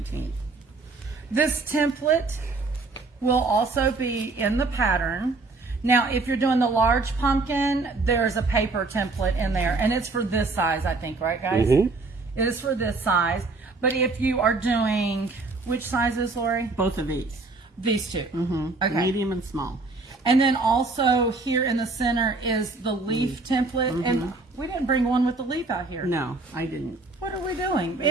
This template will also be in the pattern. Now, if you're doing the large pumpkin, there's a paper template in there, and it's for this size, I think, right, guys? It is for this size. But if you are doing, which sizes, Lori? Both of these, These two. Okay. medium and small. And then also here in the center is the leaf template. And we didn't bring one with the leaf out here. No, I didn't. What are we doing?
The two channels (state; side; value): quieter; left; 3.6 dB